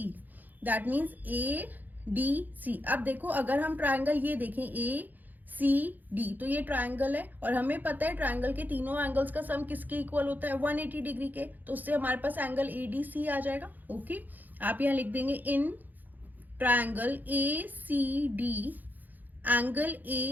that means ADC। अब देखो, अगर हम ट्रायंगल ये देखें ACD, तो ये ट्रायंगल है और हमें पता है ट्रायंगल के तीनों एंगल्स का सम किसके इक्वल होता है, 180 डिग्री के। तो उससे हमारे पास एंगल ADC आ जाएगा। ओके, आप यहाँ लिख देंगे in triangle ACD angle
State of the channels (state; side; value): late; left; 0.084 ms